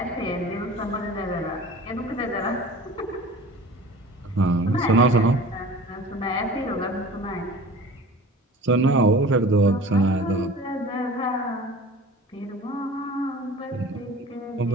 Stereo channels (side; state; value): both; normal; correlation 0.41